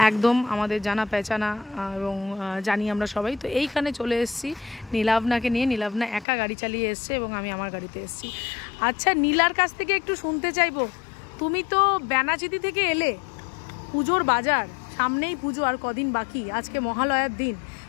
একদম আমাদের জানা পেঁচানা এবং জানি আমরা সবাই। তো এইখানে চলে এসেছি নীলাভনাকে নিয়ে। নীলাভনা একা গাড়ি চালিয়ে এসছে এবং আমি আমার গাড়িতে এসেছি। আচ্ছা, নীলার কাছ থেকে একটু শুনতে চাইবো, তুমি তো ব্যানাচিতি থেকে এলে, পুজোর বাজার, সামনেই পুজো আর কদিন বাকি, আজকে মহালয়ার দিন।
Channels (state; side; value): drops out; right; at 6.2 s